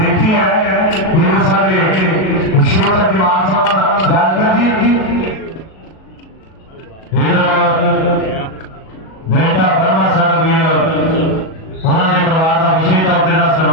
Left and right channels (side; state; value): right; late; 37 ms